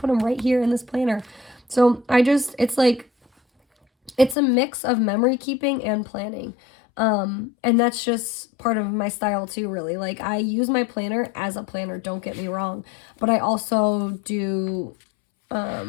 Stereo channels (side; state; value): right; drops out; at 4.4 s